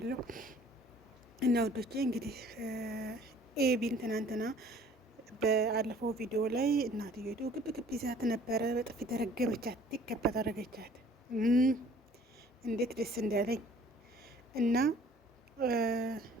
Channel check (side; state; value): both; normal; correlation 0.54